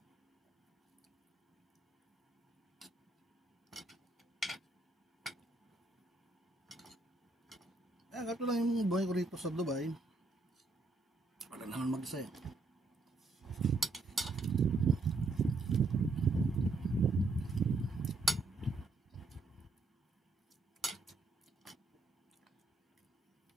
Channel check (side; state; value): left; quieter; 3.4 dB